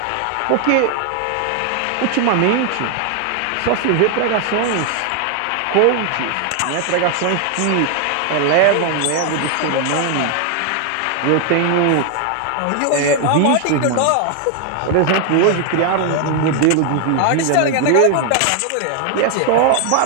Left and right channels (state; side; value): different; both; correlation 0.00